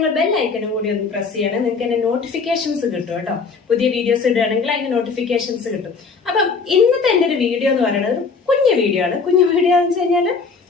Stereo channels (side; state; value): right; quieter; 4.9 dB